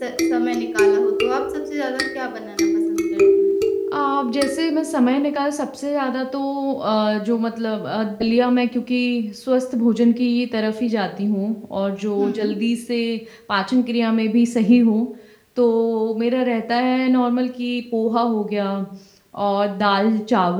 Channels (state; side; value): identical; both; correlation 1.00